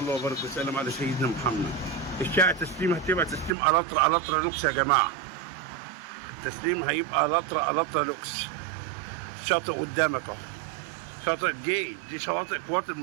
وبارك وسلم على سيدنا محمد. الشارع تسليم هتبقى تسليم الاترا لوكس يا جماعه. التسليم هيبقى الاترا لوكس. شاطئ قدامك اهو، شاطئ دي شواطئ القوات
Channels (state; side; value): drops out; left; at 3.6 s